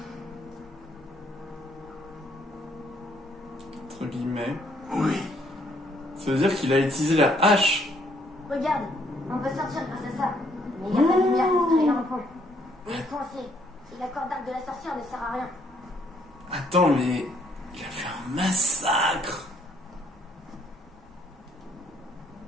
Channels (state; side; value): normal; both; correlation 0.68